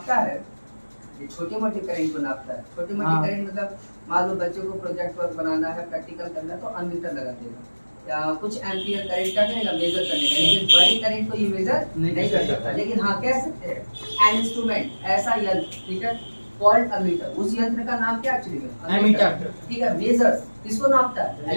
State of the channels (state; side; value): inverted; both; correlation -1.00